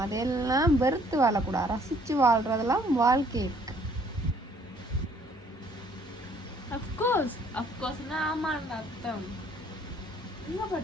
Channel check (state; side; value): normal; both; correlation 0.61